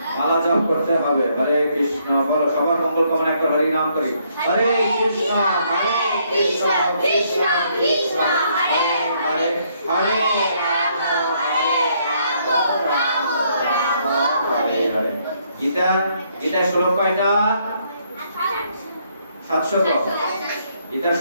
মালা জপ করতে হবে। হরে কৃষ্ণ, বলো সবার মঙ্গল কামনা, একবার হরি নাম করি। হরে কৃষ্ণ কৃষ্ণ কৃষ্ণ হরে হরে, হরে রাম রাম রাম হরে হরে। গীতার শ্লোক কয়টা? 700। গীতার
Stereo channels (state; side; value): inverted; both; correlation -0.70